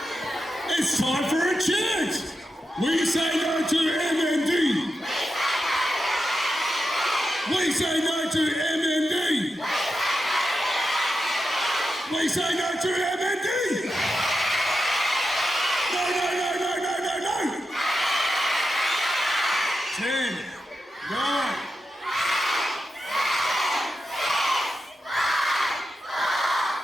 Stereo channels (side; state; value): both; normal; correlation 0.88